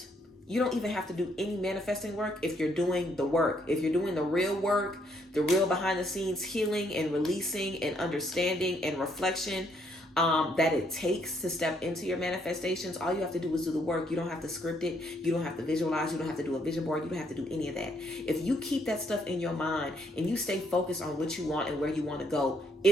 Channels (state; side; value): normal; both; correlation 0.71